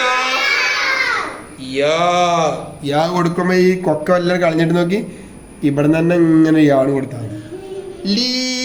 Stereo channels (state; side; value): identical; both; correlation 1.00